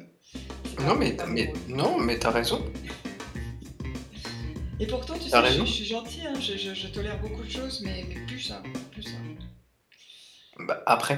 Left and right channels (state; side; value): identical; both; correlation 1.00